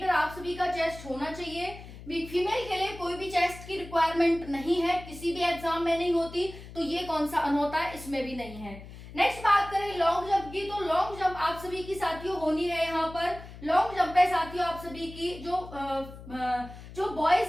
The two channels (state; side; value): noise; left; hum, 15 dB below the sound